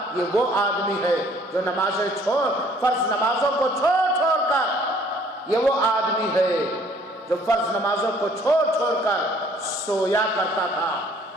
یہ وہ آدمی ہے جو نمازیں فرض نمازوں کو چھوڑ کر، یہ وہ آدمی ہے جو فرض نمازوں کو چھوڑ کر سویا کرتا تھا۔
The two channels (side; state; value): both; normal; correlation 0.59